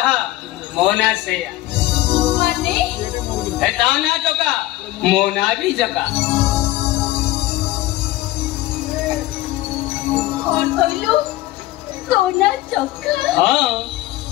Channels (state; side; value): quieter; right; 16.8 dB